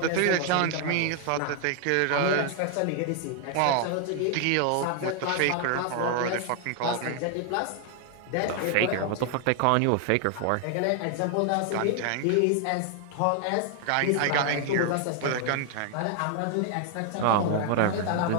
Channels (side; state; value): both; different; correlation 0.00